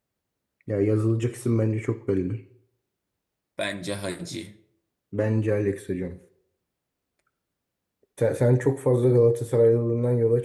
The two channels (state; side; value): identical; both; correlation 1.00